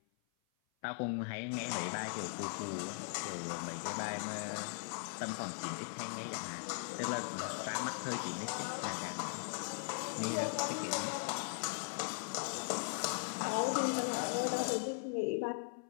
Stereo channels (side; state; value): right; silent; 52 dB below the other